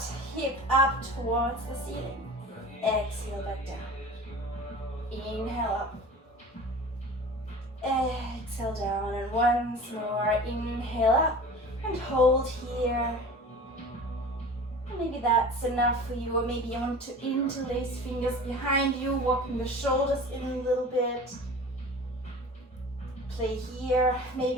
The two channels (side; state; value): both; normal; correlation 0.39